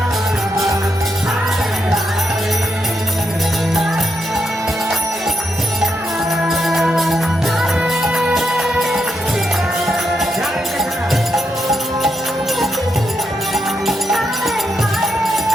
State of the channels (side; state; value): both; normal; correlation 0.82